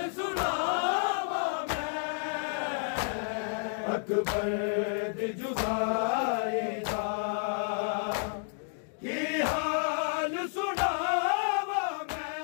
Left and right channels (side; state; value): right; silent; digital silence